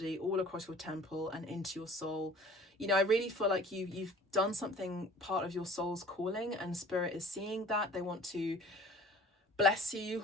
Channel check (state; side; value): normal; both; correlation 0.48